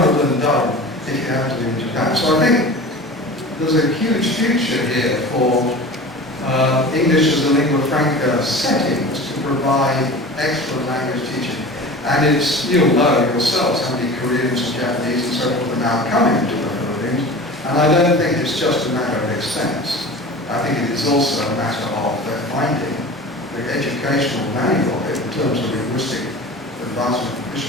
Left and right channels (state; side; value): normal; both; correlation 0.36